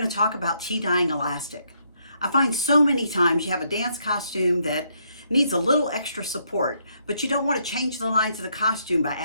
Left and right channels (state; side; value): inverted; both; correlation -0.73